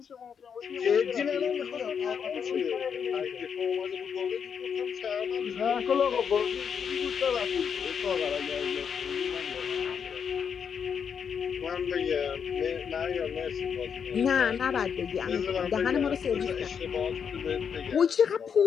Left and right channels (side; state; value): right; quieter; 7.1 dB